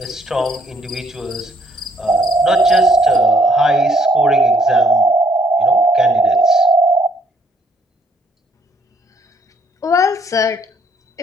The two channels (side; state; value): both; normal; correlation 0.66